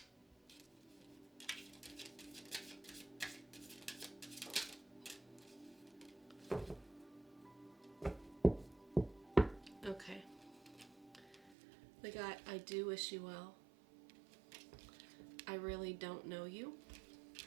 Okay. We got, I do wish you well. I really don't know you.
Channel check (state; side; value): drops out; left; at 11.6 s